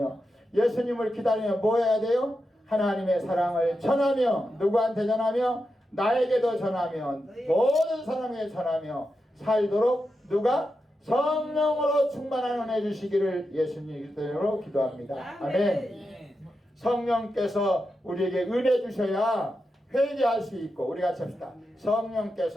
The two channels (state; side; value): normal; both; correlation 0.88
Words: 예수님을 기다리며 뭐 해야 돼요? 하나님의 사랑을 전하며 누구한테 전하며? 나에게도 전하며 모든 사람에게 전하며 살도록 누가? 성령으로 충만한 은혜 주시기를 예수님 이름으로 기도합니다. 아멘. 성령께서 우리에게 은혜 주셔야 회개할 수 있고, 우리 같이 합시다.